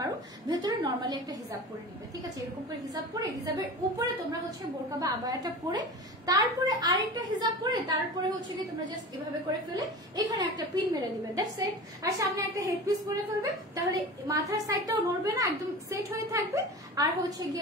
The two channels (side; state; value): both; normal; correlation 0.33